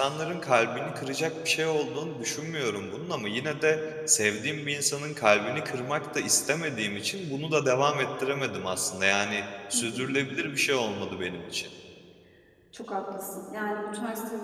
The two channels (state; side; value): identical; both; correlation 1.00